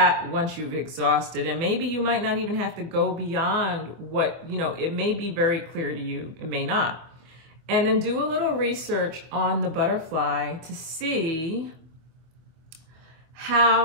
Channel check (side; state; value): left; late; 24 ms